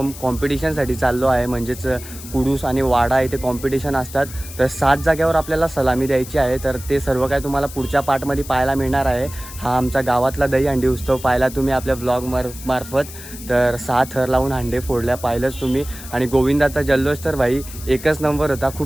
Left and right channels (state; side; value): noise; left; hiss, 14 dB below the sound